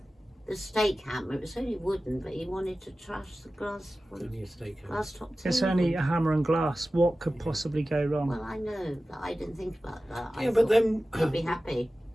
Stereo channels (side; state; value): both; normal; correlation 0.95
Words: stake hammer. It was only wooden, but he wanted to trash the glass Only a steakhouse. glass top table. It's only a hammer and glass. What could possibly go wrong? Well, I know, but I didn't think about that. I Yeah, but thought then he'd be happy.